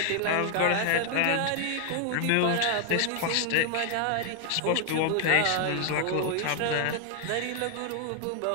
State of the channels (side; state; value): both; different; correlation 0.00